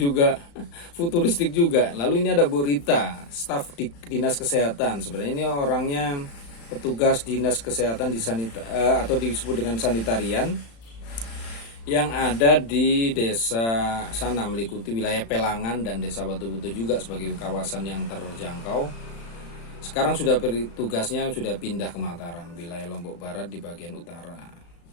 futuristik juga. Lalu ini ada Bu Rita, staf di Dinas Kesehatan. Sebenarnya ini orangnya petugas Dinas Kesehatan di atau disebut dengan sanitarian yang ada di desa sana, meliputi wilayah Pelangan dan Desa Batu Putih juga sebagai kawasan yang terjangkau. Sekarang sudah tugasnya sudah pindah ke Mataram, wilayah Lombok Barat di bagian utara.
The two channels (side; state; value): right; late; 35 ms